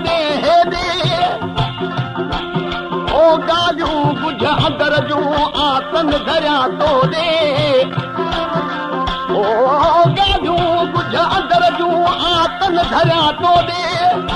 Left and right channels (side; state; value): both; identical; correlation 1.00